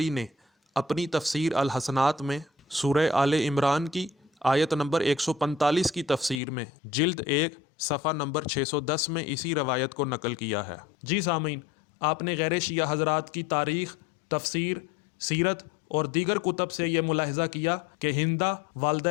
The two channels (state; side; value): drops out; right; at 6.4 s